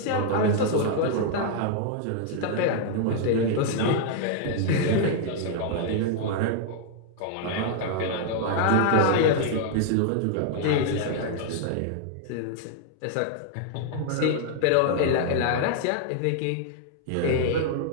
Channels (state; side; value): different; both; correlation 0.00